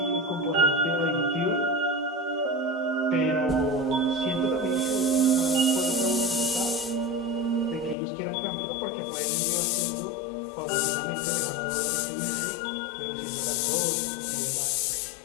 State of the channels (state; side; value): drops out; right; at 8.0 s